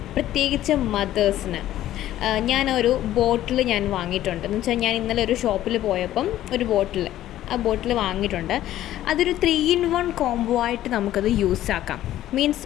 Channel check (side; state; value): right; quieter; 13.3 dB